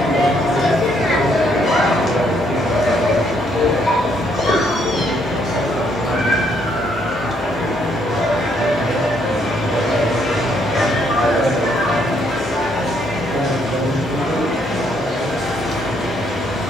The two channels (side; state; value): both; normal; correlation 0.70